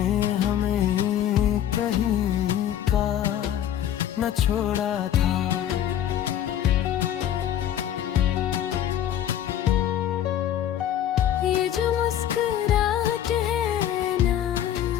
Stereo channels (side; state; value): right; quieter; 10.7 dB